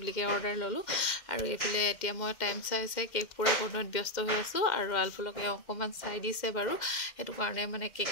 বুলিকে অৰ্ডাৰ ল'লোঁ। আৰু এইফালে এতিয়া মই টাইম চাই কেক পূৰা বনোৱাত ব্যস্ত হৈ আছোঁ। আৰু আলফুলক এওঁ অকণমান চাই দিছে বাৰু, সেইটো কাৰণে মানে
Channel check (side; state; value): right; late; 2.1 ms